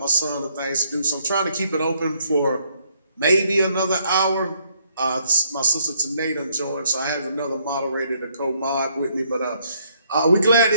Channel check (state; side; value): inverted; both; correlation -0.70